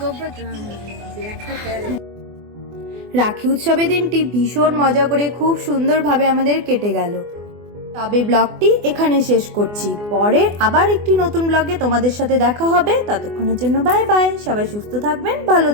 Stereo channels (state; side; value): late; left; 24 ms